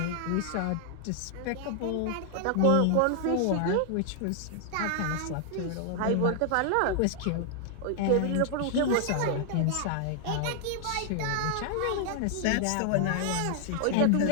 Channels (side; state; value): both; different; correlation 0.00